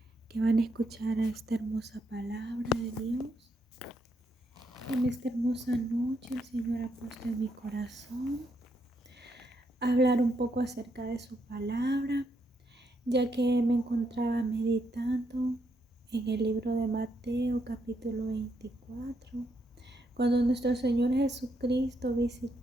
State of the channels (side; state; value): both; normal; correlation 0.77